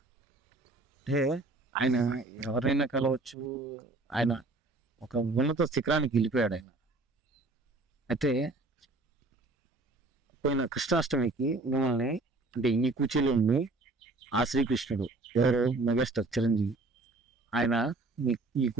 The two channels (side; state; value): left; quieter; 3.1 dB